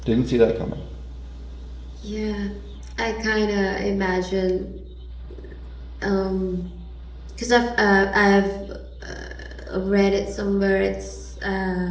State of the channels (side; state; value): both; identical; correlation 1.00